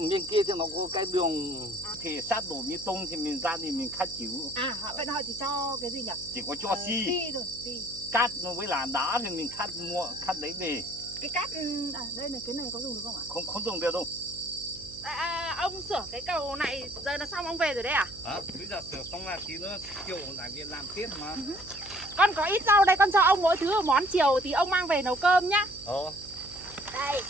bên kia thì nó có cái đường thì sát đổ bê tông thì mình ra thì mình khát chịu. À vậy họ chỉ cho cái gì nhỉ? Chỉ có cho xi thôi, xi. Cát với là đá thì mình khát đấy về. Cái cát đây này, cái này có dùng được không ạ? Không dùng được đâu. Ông sửa cái cầu này giờ là xong ông về rồi đấy à? Bây giờ sửa xong là tí nữa chiều lại về làm tiếp mà. Con có ít rau đây, con cho ông mỗi thứ một món, chiều thì ông mang về nấu cơm nhá. Đây.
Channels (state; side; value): noise; right; hum, 19 dB below the sound